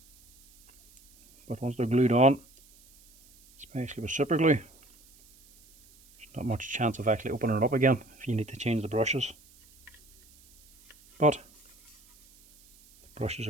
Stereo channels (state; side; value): noise; right; hiss, 27 dB below the sound